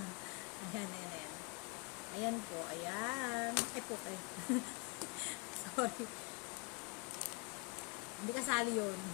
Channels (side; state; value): right; quieter; 31.9 dB